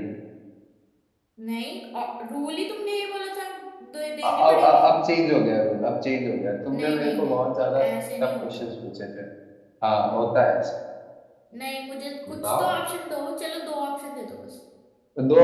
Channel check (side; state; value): both; identical; correlation 1.00